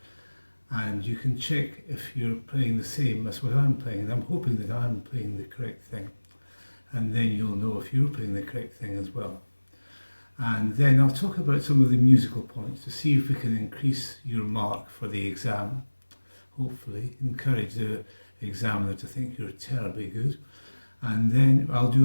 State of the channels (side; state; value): both; inverted; correlation -1.00